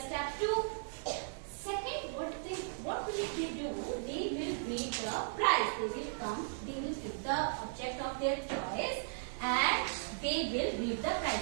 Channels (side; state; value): left; silent; digital silence